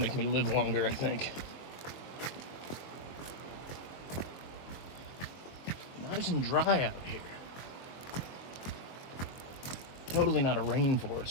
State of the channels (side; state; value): right; late; 23 ms